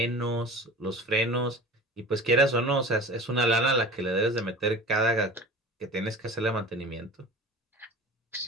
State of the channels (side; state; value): both; normal; correlation 0.37